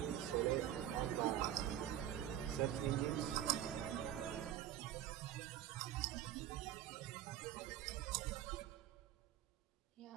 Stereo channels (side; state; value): left; quieter; 11.6 dB